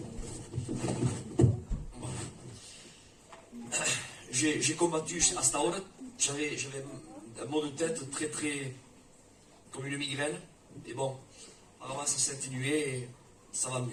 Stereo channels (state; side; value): identical; both; correlation 1.00